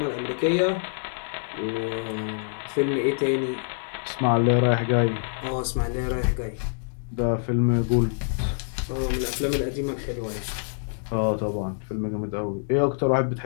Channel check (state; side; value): silent; right; digital silence